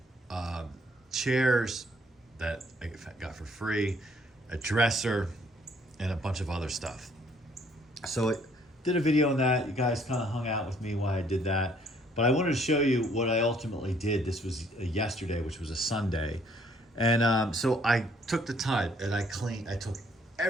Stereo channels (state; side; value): normal; both; correlation 0.64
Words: chairs that I got for free, a dresser, and a bunch of other stuff. So it did a video on that. You guys kind of hung out with me while I did that. But I wanted to show you what I ultimately did. This was yesterday, which was a Sunday. And so I took the time and I took